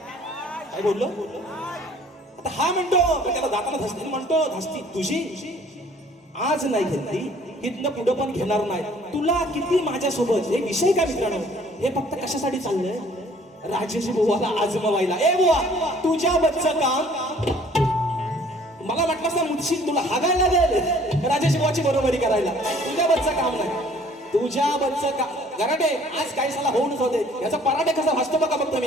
बोललो. आता हा म्हणतो त्याला दाताला धसती, म्हणतो धसती तुझी आज नाही घेतली इथनं पुढं पण घेणार नाही. तुला किती माझ्यासोबत हे विषय काय मित्रांनो, हे फक्त कशासाठी चाललंय? राजेश बुवाला आजमवायला. ए बुवा, तुझ्या बच्चं काम मला म्हटलं ना मुदशील, तुला हागायला लागेल राजेश बुवाची बरोबरी करायला. तुझ्या बच्चं काम नाही, तुझ्या बच्चं काम. गराटे आज काही साला होऊनच होते. याचा पराठे कसा भासतो बघा फक्त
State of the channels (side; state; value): both; normal; correlation 0.56